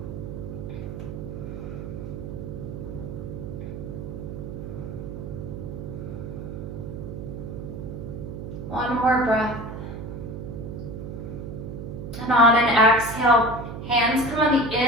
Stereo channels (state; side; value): noise; right; hum, 7 dB below the sound